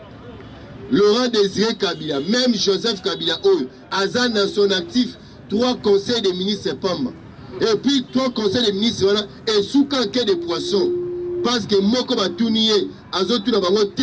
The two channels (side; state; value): both; identical; correlation 1.00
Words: Laurent Désiré Kabila, même Joseph Kabila, Azan dans son actif, 3 conseils des ministres Pamba. Et puis 3 conseils des ministres, voilà, et sous canquet de poissons. Parce que Moko Batounie, Azotou Nabango,